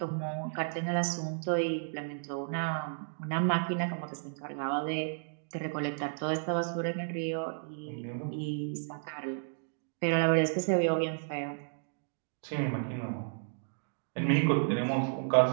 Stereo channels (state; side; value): silent; left; digital silence